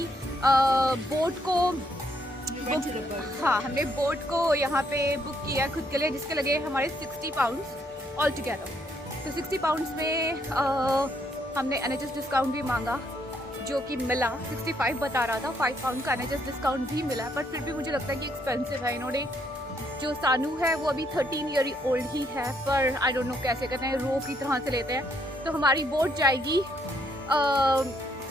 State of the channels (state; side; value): normal; both; correlation 0.72